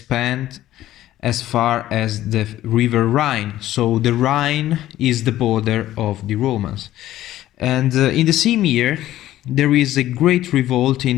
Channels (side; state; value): right; quieter; 13.9 dB